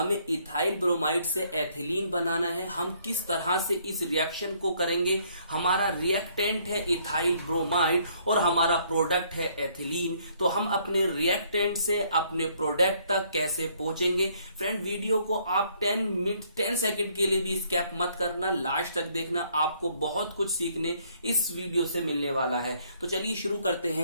इथाइल ब्रोमाइड से एथिलीन बनाना है। हम किस तरह से इस रिएक्शन को करेंगे? हमारा रिएक्टेंट है इथाइल ब्रोमाइड और हमारा प्रोडक्ट है एथिलीन। तो हम अपने रिएक्टेंट से अपने प्रोडक्ट तक कैसे पहुंचेंगे? फ्रेंड, वीडियो को आप 10 सेकंड के लिए भी स्किप मत करना, लास्ट तक देखना। आपको बहुत कुछ सीखने इस वीडियो से मिलने वाला है। तो चलिए शुरू करते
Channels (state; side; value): inverted; both; correlation -0.66